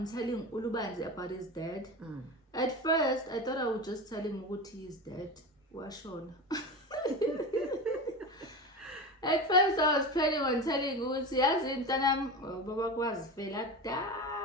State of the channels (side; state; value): both; normal; correlation 0.25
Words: telling Ulubanzi about his dad? At first, I thought I would just tell him what he is dead. Washon. At first, I was planning on telling Uti, as in Tanam, Baba was fela